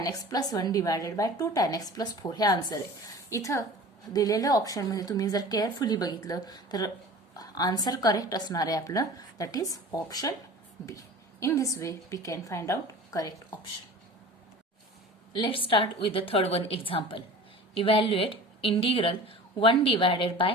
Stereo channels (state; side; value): normal; both; correlation 0.40